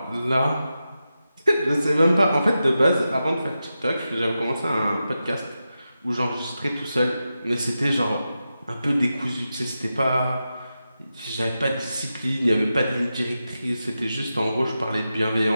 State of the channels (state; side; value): inverted; both; correlation -0.90